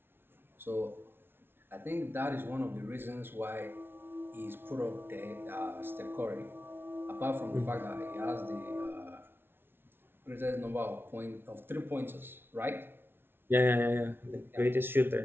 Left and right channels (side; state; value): left; late; 0.11 ms